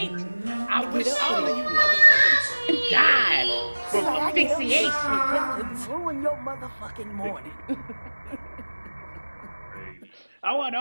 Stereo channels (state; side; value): inverted; both; correlation -1.00